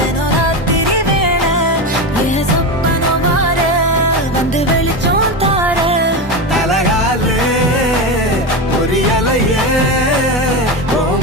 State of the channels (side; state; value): both; normal; correlation 0.18